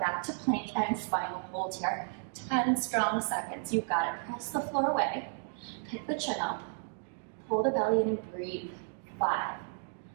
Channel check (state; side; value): silent; left; digital silence